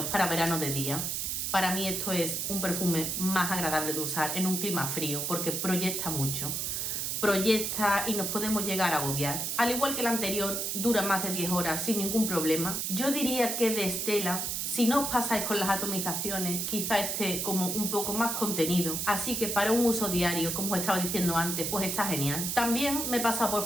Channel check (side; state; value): right; noise; hiss, 1 dB below the sound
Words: para verano de día. Para mí esto es un perfume más agradable de usar en un clima frío porque proyecta mucho. Proyecta y nos podemos llegar a agobiar. Al igual que el anterior, dura más de 10 horas sin ningún problema. Yo diría que de Stella, si no os pasáis con las atomizaciones, quizá esté como un poco más contenido. Así que para un uso diario, como os estaba diciendo antes, pues está genial. También me he pasado